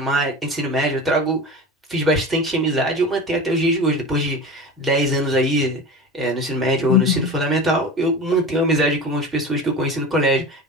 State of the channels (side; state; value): both; normal; correlation 0.32